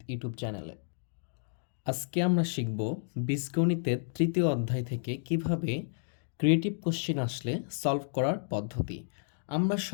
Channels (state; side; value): silent; right; digital silence